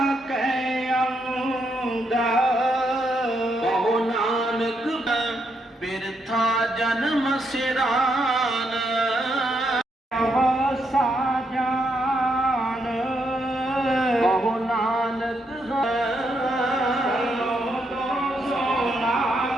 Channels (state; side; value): normal; both; correlation 0.78